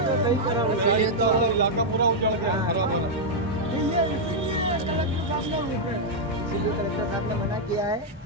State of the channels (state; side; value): normal; both; correlation -0.04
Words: तो सही करा रहे हैं। तो इलाका पूरा उजड़ गया, खराब हो रहा। इसीलिए कलेक्टर साहब ने मना किया है